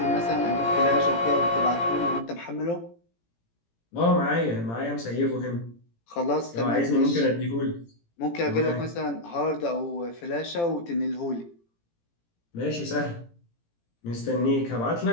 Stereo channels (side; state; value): right; late; 18 ms